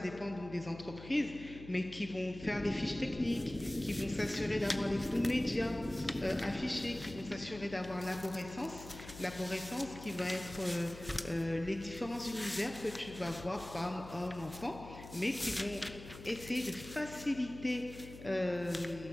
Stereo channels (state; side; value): noise; left; hum, 14 dB below the sound